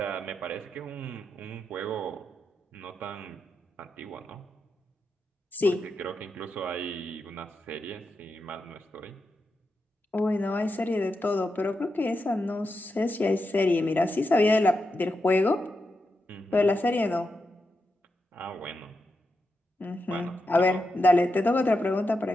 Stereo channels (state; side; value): normal; both; correlation 0.87